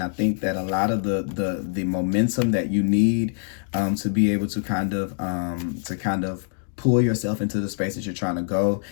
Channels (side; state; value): right; silent; digital silence